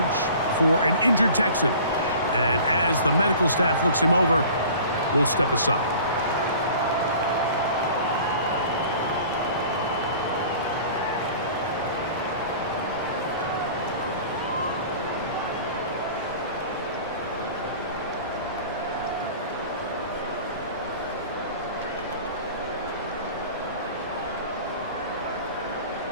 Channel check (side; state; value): both; inverted; correlation -0.44